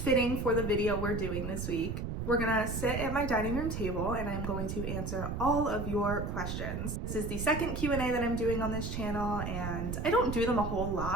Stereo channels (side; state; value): right; noise; rumble, 4 dB below the sound